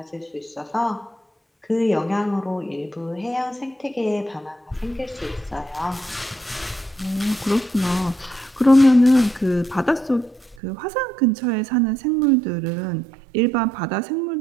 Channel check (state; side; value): drops out; left; at 10.6 s